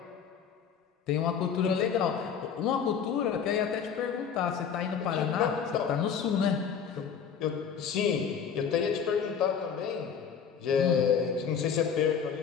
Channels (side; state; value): right; quieter; 7.2 dB